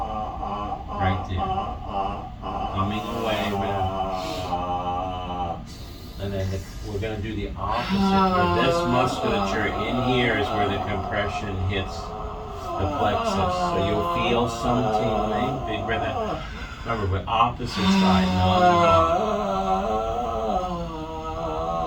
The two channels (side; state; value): both; identical; correlation 1.00